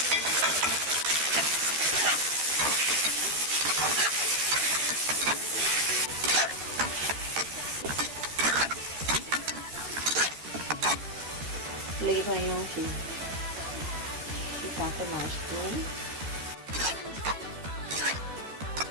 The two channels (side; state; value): left; late; 13 ms